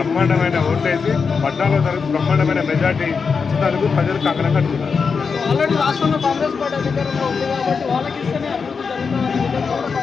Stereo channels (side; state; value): right; quieter; 5.4 dB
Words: ఓటేసి 14వ తారీఖు బ్రహ్మాండమైన మెజార్టీ ఇచ్చినందుకు ప్రజలు కంకణం కట్టుకున్నారు. ఆల్రెడీ రాష్ట్రంలో కాంగ్రెస్ పార్టీ అధికారంలో ఉంది కాబట్టి వాళ్ళకి ఇస్తేనే అభివృద్ధి జరుగుతుందని